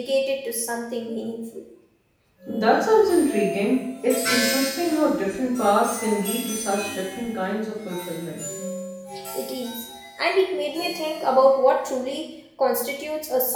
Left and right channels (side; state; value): both; identical; correlation 1.00